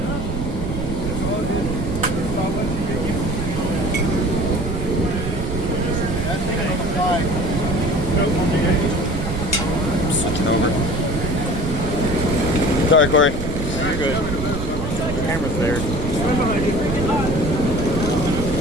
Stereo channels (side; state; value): right; noise; rumble, 4 dB below the sound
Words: Switching over. Sorry, Corey. You're good. The camera's there.